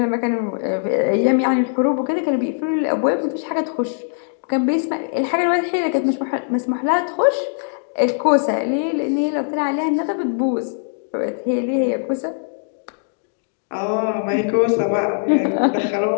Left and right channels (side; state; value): right; silent; digital silence